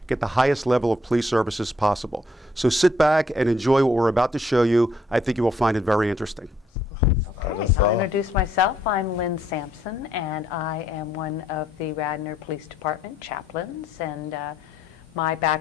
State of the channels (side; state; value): both; normal; correlation 0.69